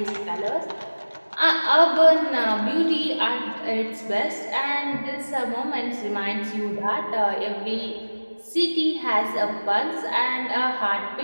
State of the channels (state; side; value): inverted; both; correlation -1.00